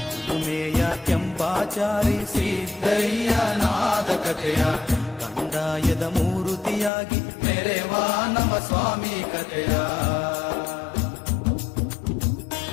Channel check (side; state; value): right; drops out; at 6.9 s